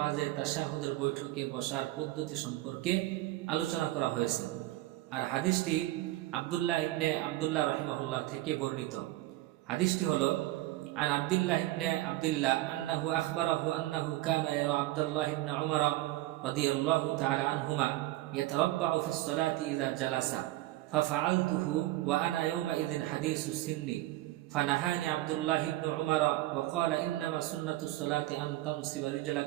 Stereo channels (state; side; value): quieter; left; 17.1 dB